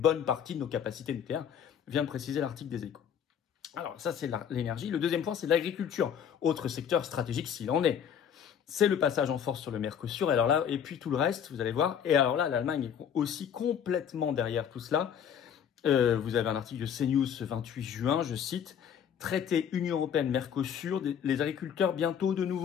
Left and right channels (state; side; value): quieter; right; 8.3 dB